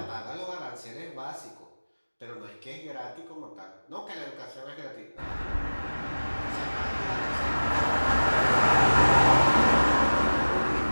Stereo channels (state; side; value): inverted; both; correlation -1.00